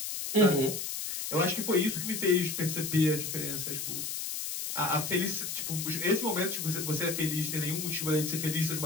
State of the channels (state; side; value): noise; left; hiss, 4 dB below the sound